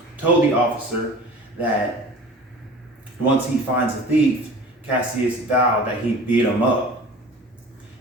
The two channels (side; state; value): both; normal; correlation 0.41